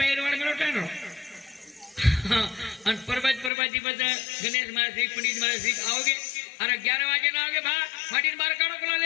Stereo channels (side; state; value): right; drops out; at 3.5 s